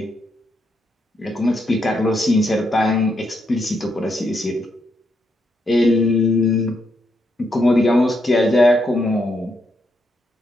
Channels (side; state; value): both; normal; correlation 0.79